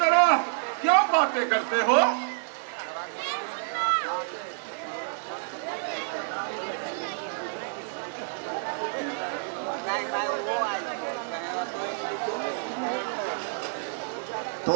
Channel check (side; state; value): left; silent; digital silence